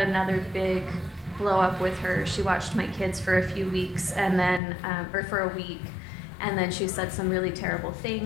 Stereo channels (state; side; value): drops out; right; at 4.6 s